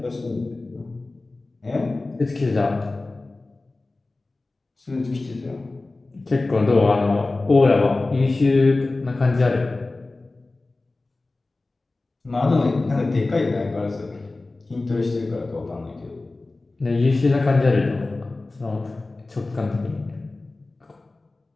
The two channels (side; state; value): right; quieter; 3.2 dB